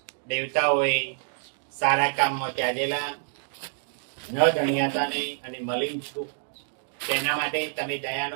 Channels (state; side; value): silent; left; 60 dB below the other